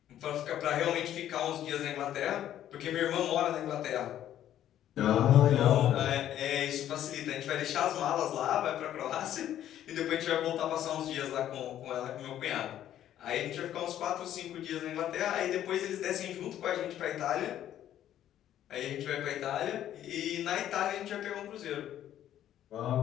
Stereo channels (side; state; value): right; quieter; 11.5 dB